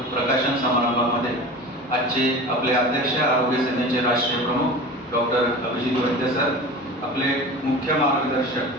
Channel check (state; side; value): normal; both; correlation 0.34